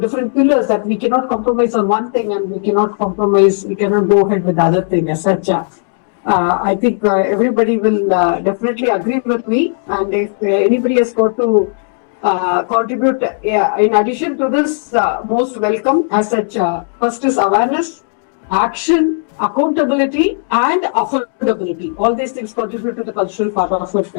different pillars that we cannot compromise on one thing, and we cannot go ahead with the other thing as such. I think everybody will definitely agree with me, and if anybody has got to contribute, in addition to this, most welcome as such. First is awareness, action, accountability, and affordability. All these things contribute to the cultural part of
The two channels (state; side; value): silent; right; digital silence